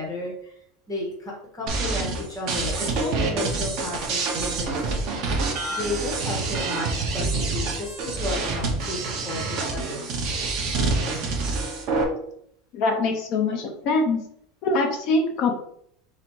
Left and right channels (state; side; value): normal; both; correlation 0.34